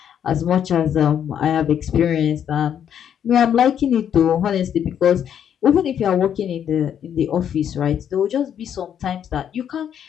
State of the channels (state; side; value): quieter; right; 9.1 dB